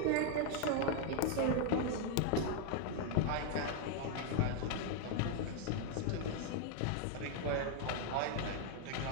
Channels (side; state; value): both; different; correlation 0.00